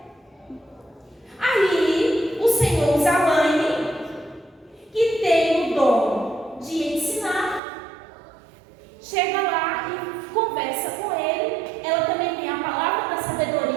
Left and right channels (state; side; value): drops out; left; at 7.6 s